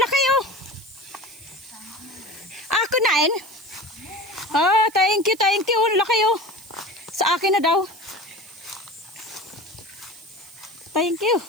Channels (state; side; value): noise; right; hiss, 20 dB below the sound